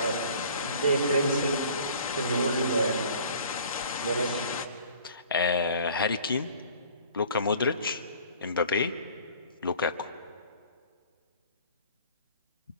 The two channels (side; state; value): both; inverted; correlation -0.50